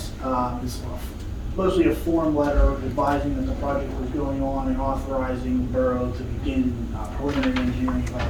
It's mostly a form letter advising that the project was going on and authorizing the borough to begin preliminary engineering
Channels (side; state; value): both; identical; correlation 1.00